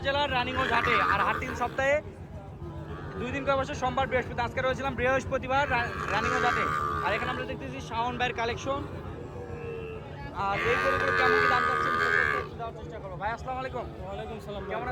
রানীগঞ্জ হাটে। আর হাট 3 সপ্তাহে 2 দিন করে বসে, সোমবার বৃহস্পতি। আজকে রয়েছিলাম বৃহস্পতিবার রানীগঞ্জ হাটে। আর এখানে আমরা দেখতেছি শাওন ভাইয়ের কালেকশন। আর এই গরুগুলো কেমন কি দাম চাচ্ছেন দেওয়ার চেষ্টা করবো। ভাই আসসালামু আলাইকুম। ওয়ালাইকুম সালাম। কেমন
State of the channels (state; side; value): identical; both; correlation 1.00